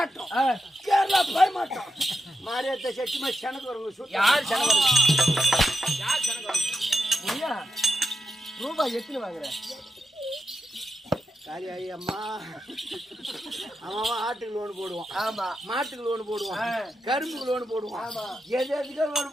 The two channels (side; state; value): both; normal; correlation 0.88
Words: கேரளா பயமாட்டம், மாரியத்தை சட்டிமா செனக்கு வருங்க. யார் செனக்கு ரூபாய் எத்தனை வாங்குற? காலியாயி அம்மா அவன் ஆட்டுக்கு லோன் போடுவான். ஆமா மாட்டுக்கு லோன் போடுவான். கரும்புக்கு லோன் போடுவான். ஆமா எது எதுக்கோ லோன்